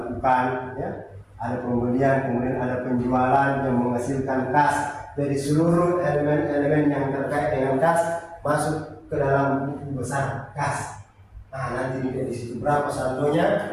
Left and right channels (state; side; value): identical; both; correlation 1.00